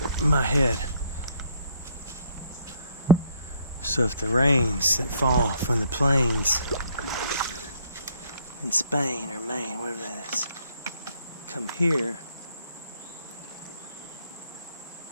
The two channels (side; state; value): both; inverted; correlation -0.63